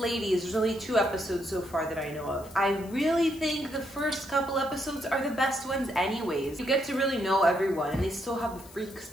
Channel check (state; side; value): noise; left; hiss, 21 dB below the sound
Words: There's only 2 episodes so far that I know of. I really think the first couple episodes are the best ones anyways. You get to really know everyone, and they still have the freaks